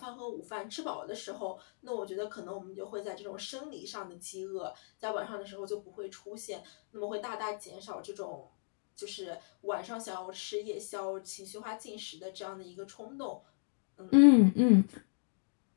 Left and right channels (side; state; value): right; silent; digital silence